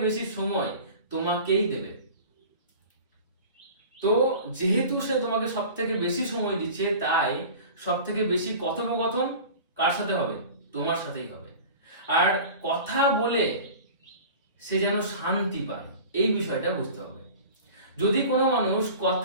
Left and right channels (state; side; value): inverted; both; correlation -0.39